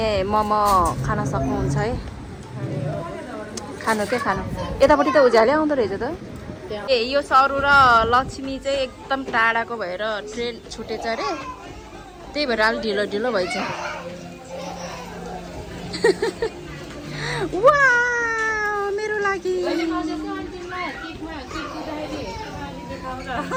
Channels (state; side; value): identical; both; correlation 1.00